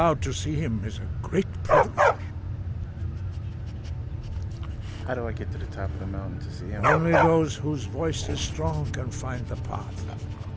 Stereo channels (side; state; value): both; identical; correlation 1.00